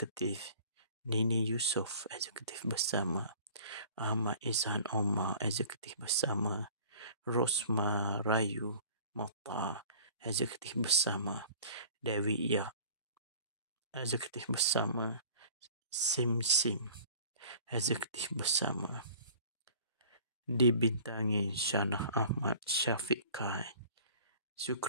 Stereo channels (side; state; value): both; inverted; correlation -0.46